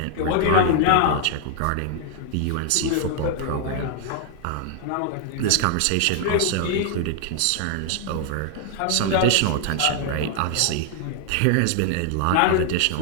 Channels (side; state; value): both; different; correlation 0.00